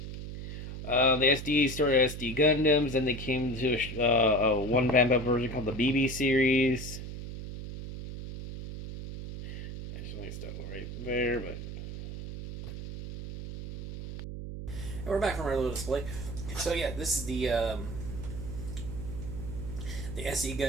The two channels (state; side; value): noise; right; hum, 8 dB below the sound